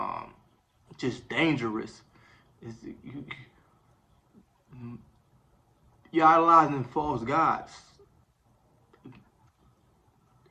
just dangerous, is you're idolizing false gods,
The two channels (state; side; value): identical; both; correlation 1.00